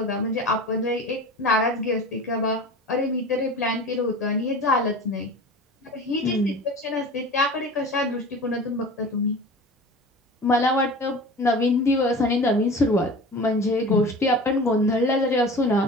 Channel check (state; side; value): normal; both; correlation 0.36